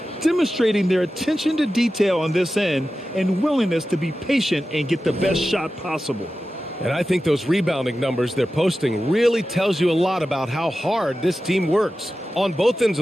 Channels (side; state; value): both; normal; correlation 0.93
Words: demonstrating their attention to detail on this end and willingness to be patient and get the best shot possible. And I think those rebounding numbers they're posting really tells you a lot about how hard this team works on both ends